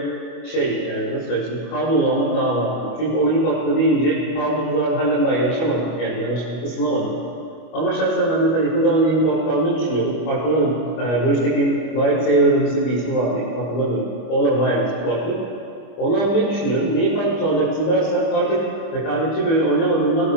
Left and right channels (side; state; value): right; late; 25 ms